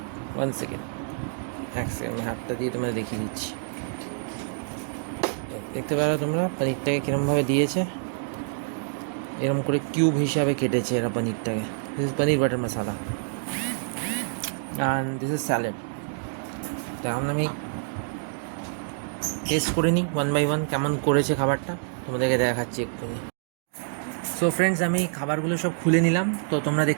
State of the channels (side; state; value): left; silent; digital silence